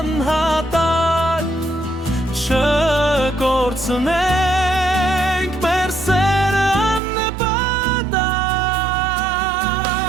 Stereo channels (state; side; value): drops out; left; at 7.0 s